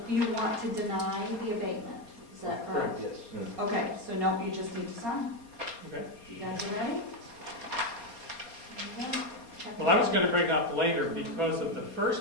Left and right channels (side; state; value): right; late; 4.3 ms